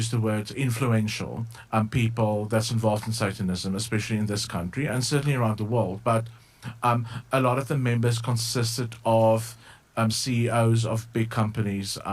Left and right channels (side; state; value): both; identical; correlation 1.00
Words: the word influential people that's involved in Satanism, especially in this country and certainly around the world. But a lot of the members consisted of CEOs of big companies,